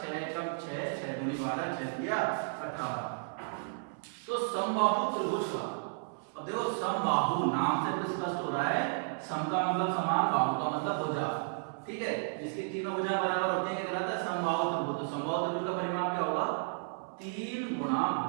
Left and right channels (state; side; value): silent; left; 56 dB below the other